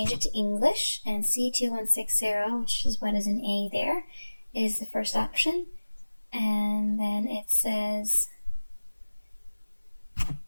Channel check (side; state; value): both; inverted; correlation -1.00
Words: it to English, and C2160, which is what is an A there, is the first option. And then it says